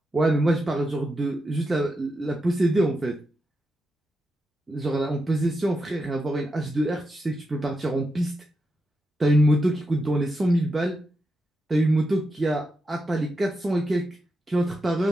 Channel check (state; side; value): normal; both; correlation 0.87